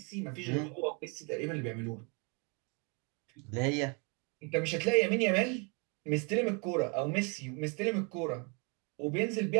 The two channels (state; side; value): quieter; left; 34.0 dB